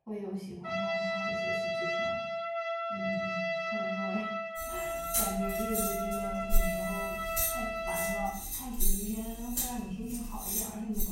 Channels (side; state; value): both; identical; correlation 1.00